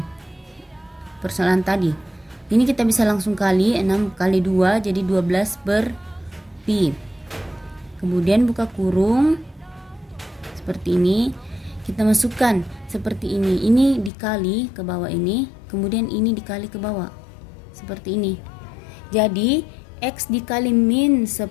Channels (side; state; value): right; drops out; at 14.1 s